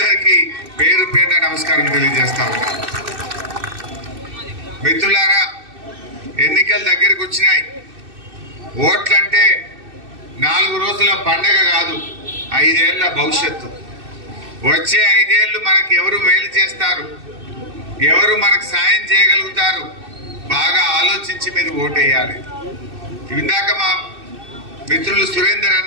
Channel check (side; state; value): left; late; 2.6 ms